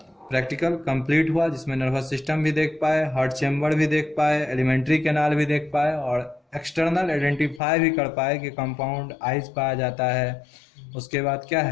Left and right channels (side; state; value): right; drops out; at 7.6 s